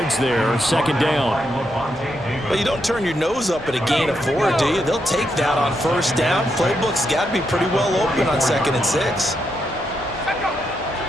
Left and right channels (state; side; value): normal; both; correlation 0.81